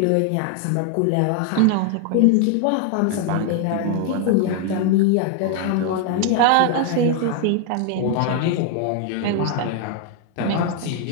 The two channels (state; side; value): different; both; correlation 0.01